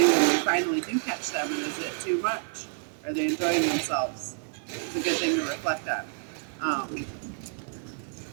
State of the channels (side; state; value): left; silent; 59 dB below the other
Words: do when we finally do catch them, and is it too much? Are they enjoying themselves? It's a good thing to reflect on.